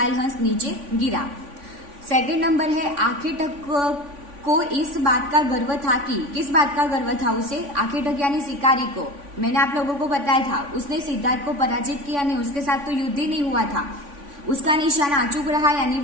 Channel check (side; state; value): left; late; 3.5 ms